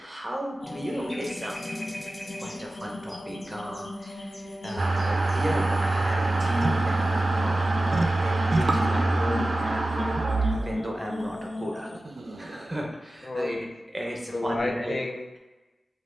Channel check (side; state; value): both; normal; correlation 0.95